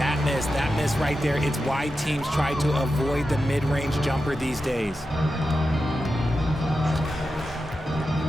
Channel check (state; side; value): normal; both; correlation 0.90